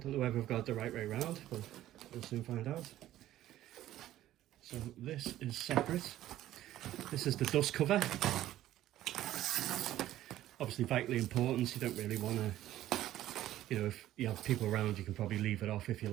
know whether I've got it the right way around, but we'll soon find out. So this is separate. This is the dust cover. Obviously vitally important. You don't really want to, you know, if you have people around, you can probably leave it off if you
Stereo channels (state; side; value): quieter; left; 13.7 dB